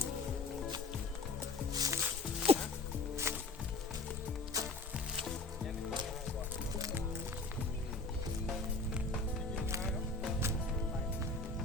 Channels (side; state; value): right; quieter; 3.4 dB